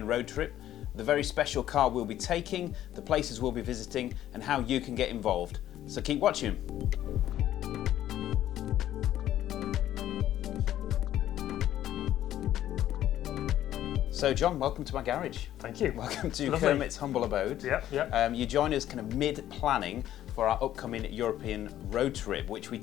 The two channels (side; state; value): right; quieter; 12.4 dB